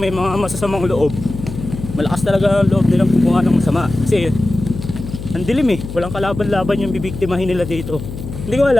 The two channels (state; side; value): noise; left; hum, 9 dB below the sound